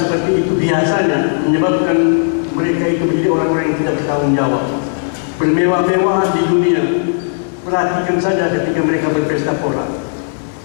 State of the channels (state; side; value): silent; right; 69 dB below the other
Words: itu biasanya menyebabkan mereka itu menjadi orang-orang yang tidak bertanggung jawab, bermewah-mewahan di dunia. Perhatikan saja ketika mereka berpesta pora.